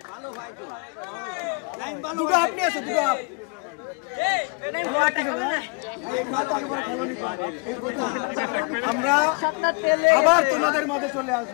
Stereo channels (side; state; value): right; quieter; 33.0 dB